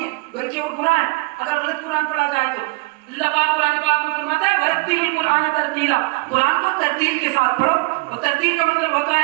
ہے بلکہ اور گناہ ہے اگر غلط قرآن پڑھا جائے تو۔ اللہ پاک قرآن پاک میں فرماتا ہے وَرَتِّلِ الْقُرْآنَ تَرْتِيلًا، قرآن کو ترتیل کے ساتھ پڑھو، اور ترتیل کا مطلب ہوتا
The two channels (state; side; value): quieter; left; 26.7 dB